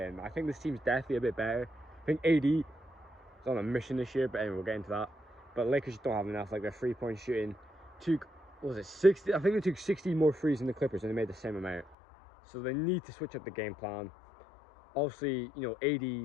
I think this team's definitely a bit better. I think AD is on a mission this year, but anyway, we'll get into that. But Lakers don't have enough. Like their three-point shooting took, what was it, 60? I think they took 60 more threes than the Clippers, and they made the same amount. So they need to switch up the game plan. Obviously, you know, AD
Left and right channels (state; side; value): drops out; right; at 12.0 s